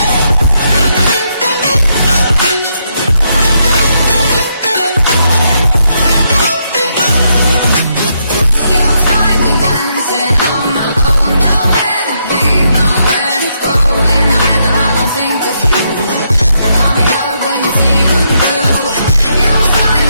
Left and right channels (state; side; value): inverted; both; correlation -0.78